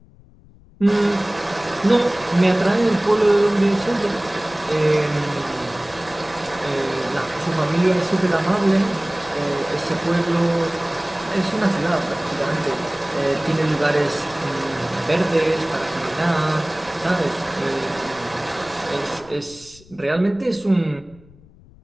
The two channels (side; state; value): left; noise; rumble, 25 dB below the sound